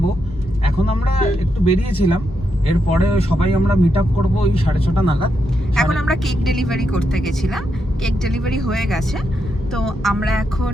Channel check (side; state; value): both; normal; correlation 0.82